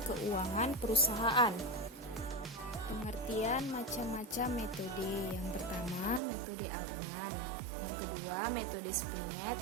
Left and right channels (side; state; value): left; drops out; at 6.2 s